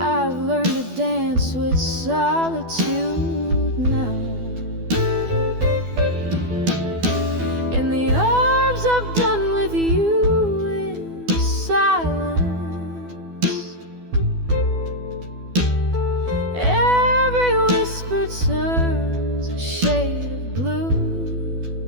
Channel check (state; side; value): late; left; 12 ms